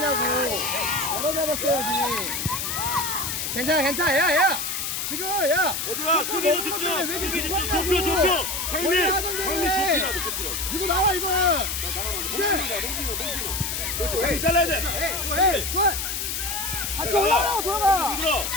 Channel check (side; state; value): left; noise; hiss, 2 dB below the sound